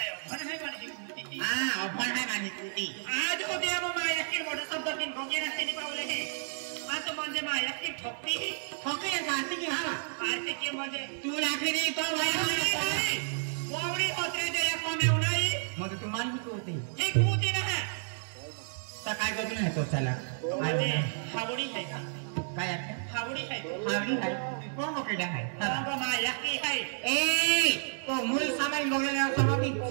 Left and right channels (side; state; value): left; silent; digital silence